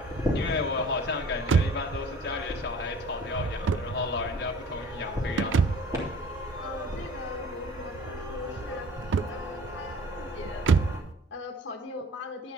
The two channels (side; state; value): both; normal; correlation 0.48